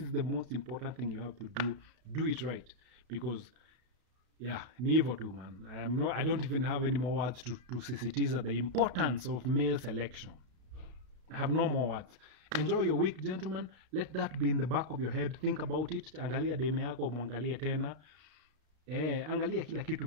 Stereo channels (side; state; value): left; late; 32 ms